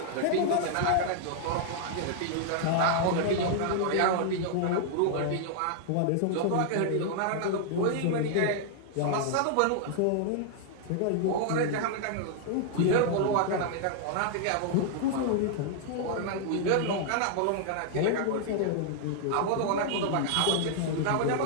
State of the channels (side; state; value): both; different; correlation 0.00